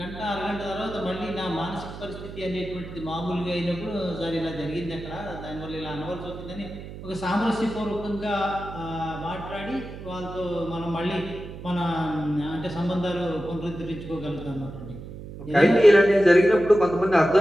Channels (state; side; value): noise; right; hum, 12 dB below the sound